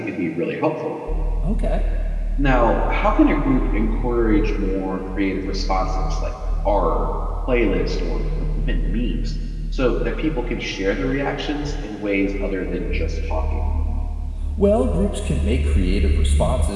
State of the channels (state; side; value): identical; both; correlation 1.00